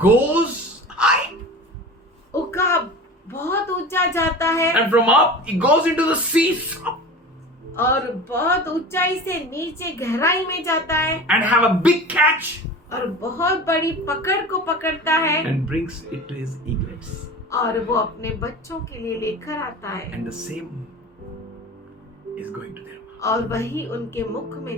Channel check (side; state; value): both; normal; correlation 0.35